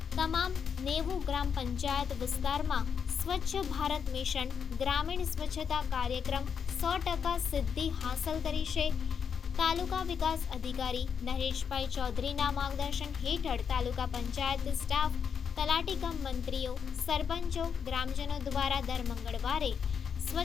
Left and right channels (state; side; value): quieter; right; 7.0 dB